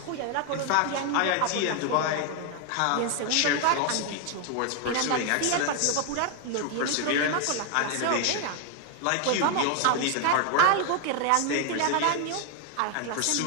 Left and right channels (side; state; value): both; different; correlation 0.01